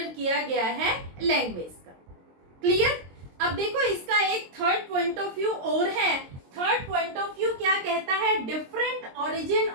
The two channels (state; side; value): late; left; 22 ms